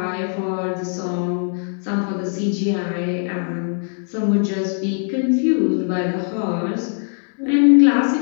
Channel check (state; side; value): silent; right; 56 dB below the other